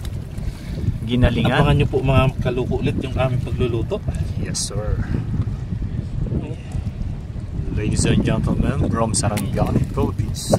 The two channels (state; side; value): identical; both; correlation 1.00